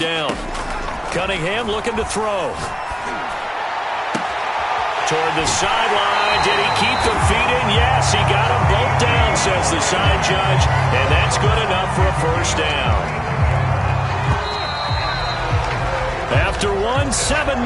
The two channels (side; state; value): both; identical; correlation 1.00